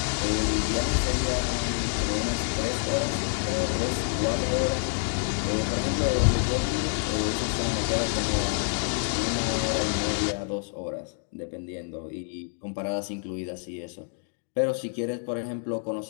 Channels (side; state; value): right; silent; digital silence